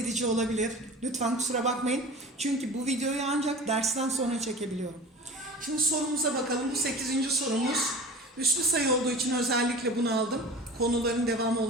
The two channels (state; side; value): normal; both; correlation 0.36